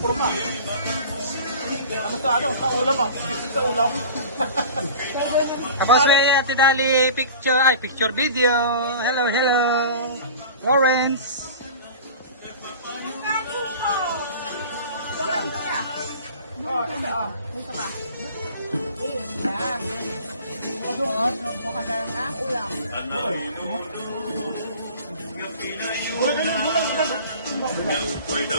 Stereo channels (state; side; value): inverted; both; correlation -0.40